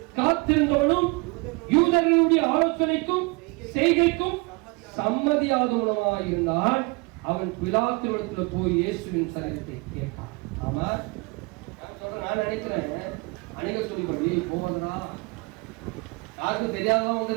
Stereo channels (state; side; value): quieter; left; 27.5 dB